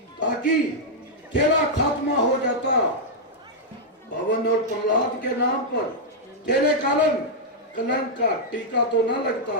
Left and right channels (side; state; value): both; normal; correlation -0.06